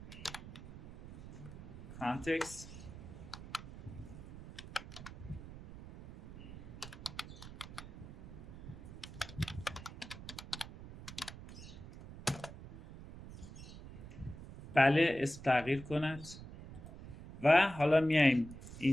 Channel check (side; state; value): right; noise; rumble, 13 dB below the sound